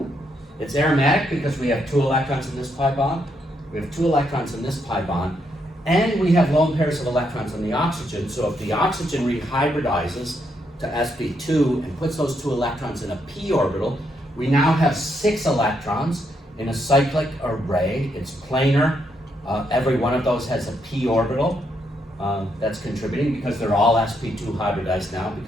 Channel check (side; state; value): both; normal; correlation 0.77